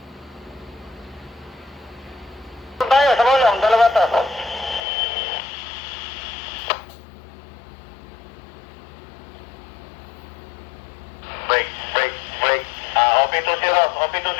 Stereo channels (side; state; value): right; drops out; at 4.9 s